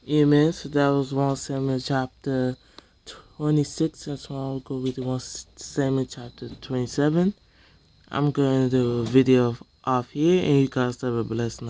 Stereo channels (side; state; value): both; identical; correlation 1.00